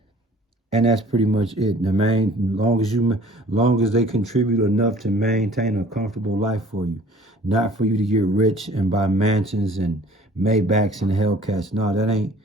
And that's pretty much it. Long as they contribute enough to maintain a comfortable life for you, not for you to get rich and buy mansions and Maybachs and Hellcats. No, that ain't.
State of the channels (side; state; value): both; normal; correlation 0.51